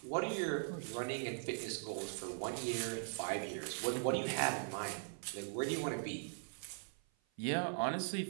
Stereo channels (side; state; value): left; silent; 51 dB below the other